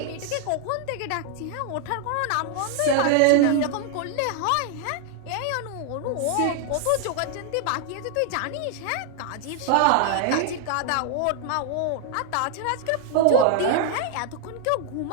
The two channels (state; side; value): different; both; correlation 0.00